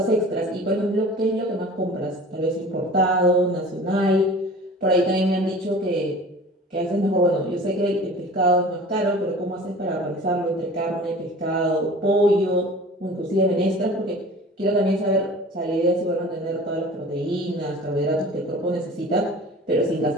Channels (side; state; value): both; normal; correlation 0.42